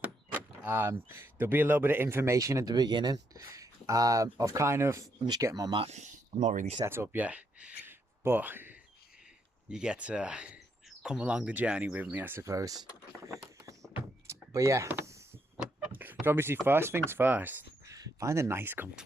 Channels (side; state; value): both; normal; correlation 0.76